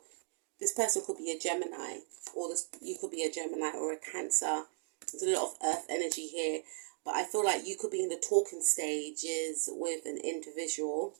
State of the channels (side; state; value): left; silent; digital silence